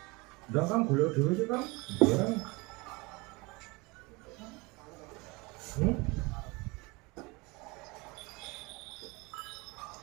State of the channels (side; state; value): left; quieter; 25.6 dB